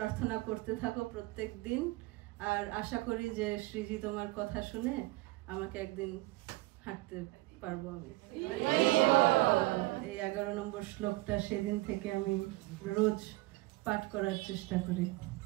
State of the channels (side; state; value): left; quieter; 20.9 dB